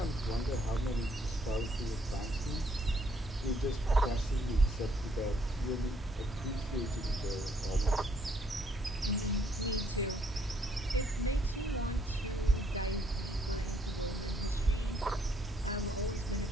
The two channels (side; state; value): both; normal; correlation 0.69